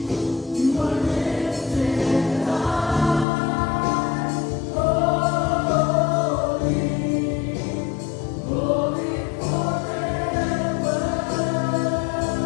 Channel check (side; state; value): right; drops out; at 3.2 s